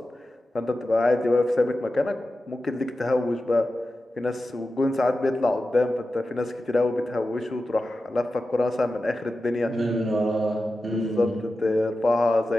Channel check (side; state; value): both; normal; correlation 0.93